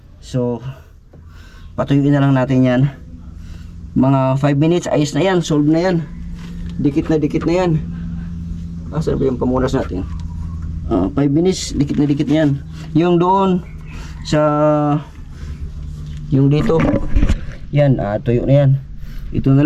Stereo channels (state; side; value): identical; both; correlation 1.00